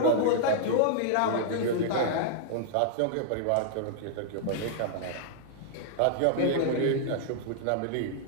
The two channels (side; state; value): both; different; correlation -0.01